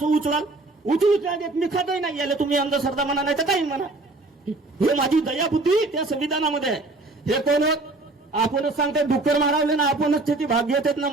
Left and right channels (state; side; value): quieter; left; 3.1 dB